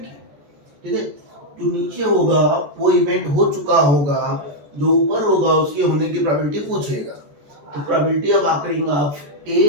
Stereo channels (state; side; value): late; left; 14 ms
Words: ठीक है, जो नीचे होगा वो इवेंट हो चुका होगा, जो ऊपर होगा उसके होने की प्रोबेबिलिटी पूछेगा। तो probability of occurring of A